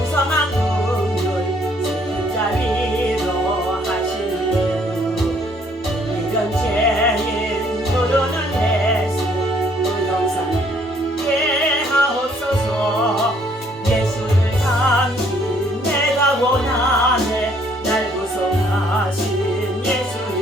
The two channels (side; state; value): both; normal; correlation 0.64